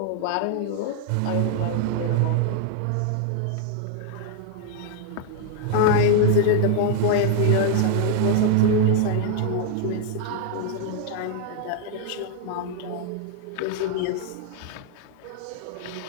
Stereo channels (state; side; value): different; both; correlation 0.00